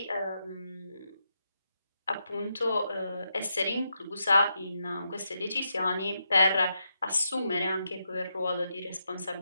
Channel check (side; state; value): both; inverted; correlation -0.83